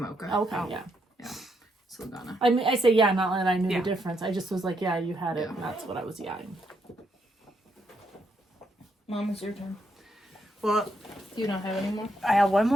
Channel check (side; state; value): both; normal; correlation 0.77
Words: Okay, Oh. yeah. Saldana. I mean, I say yeah, not that I knew Yeah. the difference. I just was like, yeah, you had it. Yeah. And that's what I was yawning. Mom, it's your turn. Well, Do you not have any more? I have one